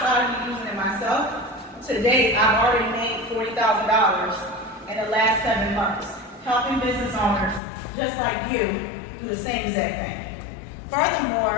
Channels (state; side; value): drops out; right; at 7.6 s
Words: of me using it myself, to date, I've already made $40,000 in the last 7 months, helping business owners just like you do the same exact thing.